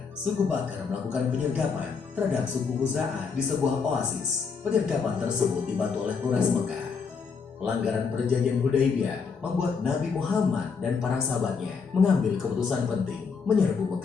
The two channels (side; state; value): right; quieter; 5.5 dB